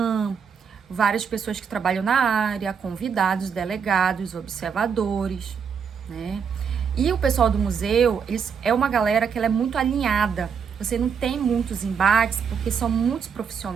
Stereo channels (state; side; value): quieter; left; 6.7 dB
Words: várias pessoas que trabalham na área, convidados, delegados, observadores, né? E o pessoal do museu, é uma galera que ela é muito alinhada você não tem muitos embates, porque são muitos